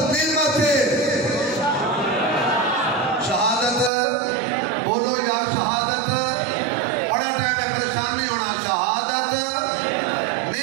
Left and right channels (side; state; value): left; drops out; at 3.9 s